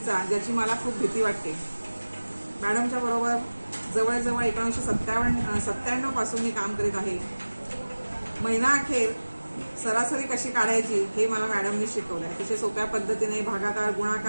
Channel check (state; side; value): inverted; both; correlation -1.00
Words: ज्याची मला खूप भीती वाटते. मॅडमच्या बरोबर जवळजवळ 1997 पासून मी काम करीत आहे. महिना अखेर सरासरी कशी काढायची हे मला मॅडमनी शिकवलं. अतिशय सोप्या पद्धतीने भागाकार,